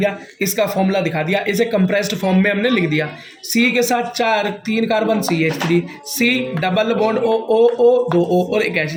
इसका फॉर्मूला दिखा दिया, इसे कंप्रेस्ड फॉर्म में हमने लिख दिया। सी के साथ 3 carbon CH3, C double bond O 2 O और एक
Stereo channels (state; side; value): identical; both; correlation 1.00